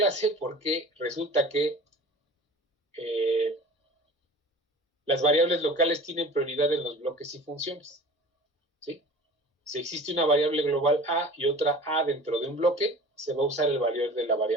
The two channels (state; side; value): normal; both; correlation 0.41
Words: porque resulta que las variables locales tienen prioridad en los bloques y funciones, ¿sí? Si existe una variable global A y otra A dentro de un bloque, se va a usar el valor de la